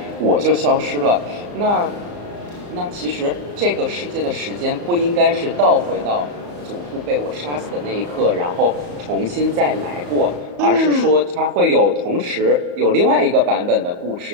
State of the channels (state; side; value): late; left; 34 ms